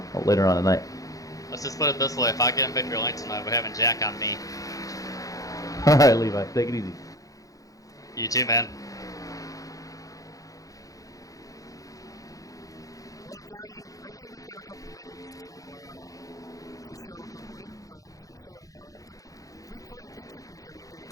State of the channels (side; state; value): right; late; 0.17 ms